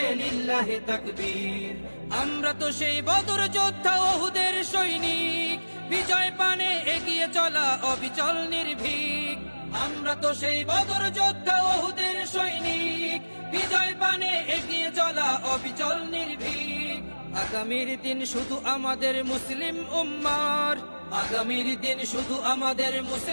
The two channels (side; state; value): both; inverted; correlation -1.00